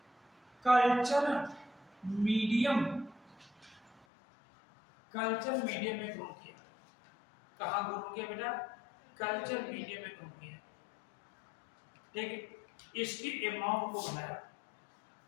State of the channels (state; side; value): drops out; right; at 4.0 s